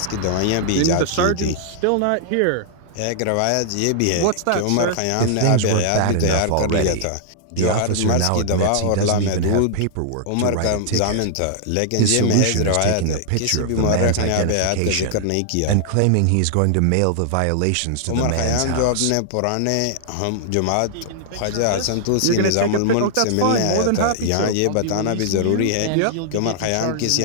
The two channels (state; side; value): different; both; correlation -0.01